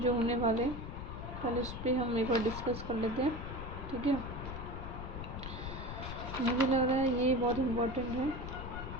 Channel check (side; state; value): left; noise; rumble, 7 dB below the sound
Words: जो होने वाले, पहले उस पर हम एक बार डिस्कस कर लेते हैं, ठीक है। मुझे लग रहा है ये बहुत इम्पोर्टेंट है,